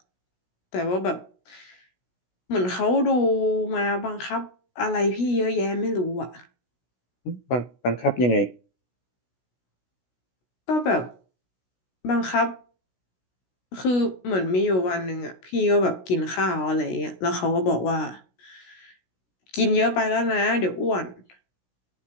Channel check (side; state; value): right; late; 16 ms